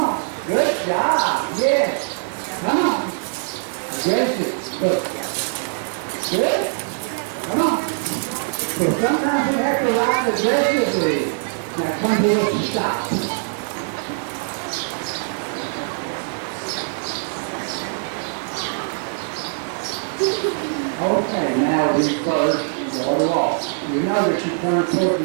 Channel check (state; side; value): silent; left; 64 dB below the other